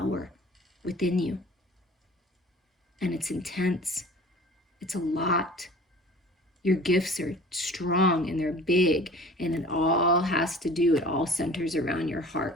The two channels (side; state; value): both; normal; correlation 0.44